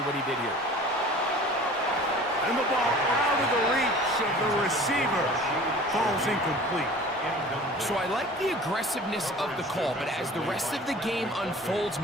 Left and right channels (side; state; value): both; normal; correlation 0.43